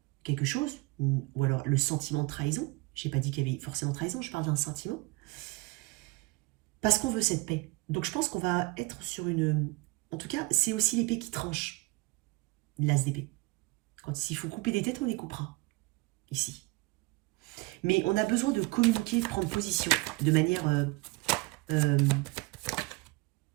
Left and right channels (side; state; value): left; quieter; 24.2 dB